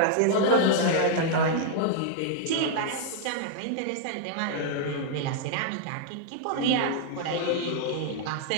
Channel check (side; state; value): both; different; correlation -0.01